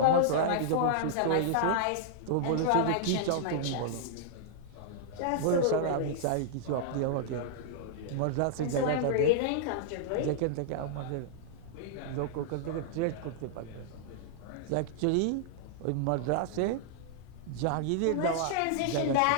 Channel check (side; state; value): both; different; correlation -0.01